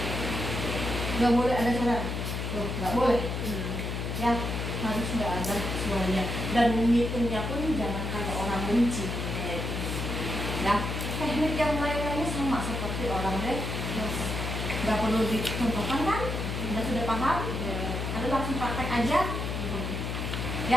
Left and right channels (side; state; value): left; noise; hum, 3 dB below the sound